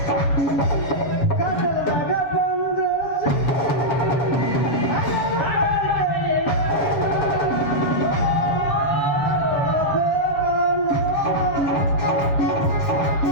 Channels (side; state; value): right; late; 7.3 ms